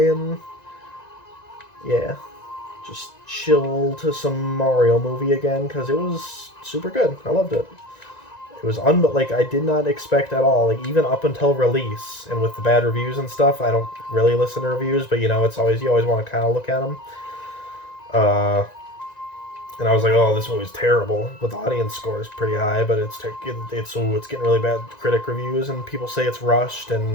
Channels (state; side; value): late; right; 1.9 ms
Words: and yeah, just chill to some Mario movie again because it was super good. I loved it. It was like I did not expect at all. Like even up until release and with the bad reviews and stuff, I don't really listen to reviews, but it's always you always want to kind of look at them. And I was like, oh, this movie's terrible. But the audience score is pretty high, but it's getting really bad critic reviews, and people say it's rushed